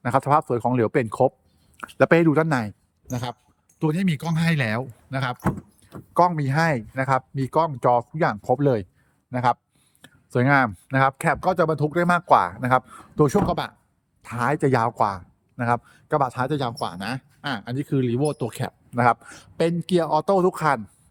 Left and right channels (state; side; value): identical; both; correlation 1.00